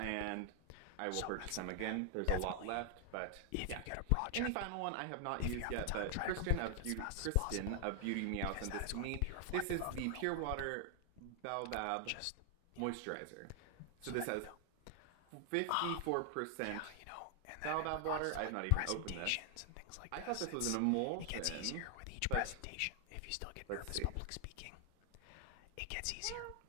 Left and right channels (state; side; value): different; both; correlation 0.00